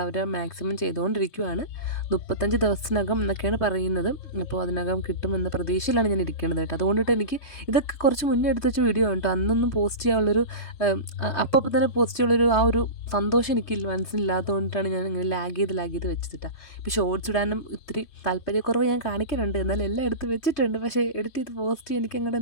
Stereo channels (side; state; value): right; late; 3.2 ms